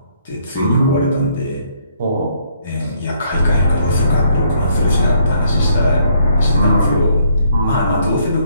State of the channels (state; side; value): inverted; both; correlation -0.68